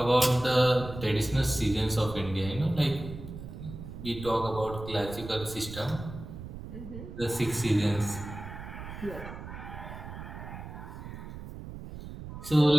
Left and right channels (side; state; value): right; noise; rumble, 11 dB below the sound